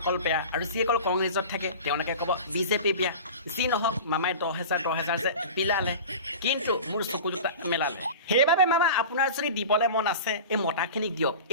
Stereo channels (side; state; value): both; inverted; correlation -0.34